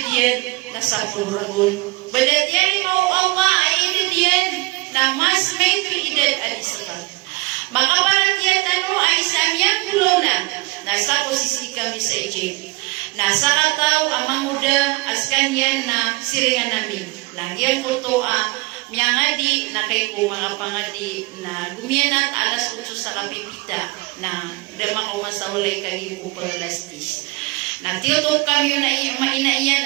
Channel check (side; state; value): left; quieter; 24.3 dB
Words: na sa puluragon badatian mo Allah aididyan na mas may tuidad alisakan makabaratian ano ay samyang gulo na nasa posisi kami sa Egypt nasa kataw amang muda askan yan na siringan namin langyan ko to miyangadi na kay ko mga pangadi na gumianat alas 8 sa kapipita na dama ko masawalay kay ko palalastis na tiyotong kami na